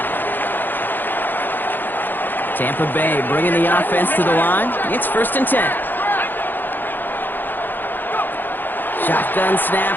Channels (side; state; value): right; late; 0.091 ms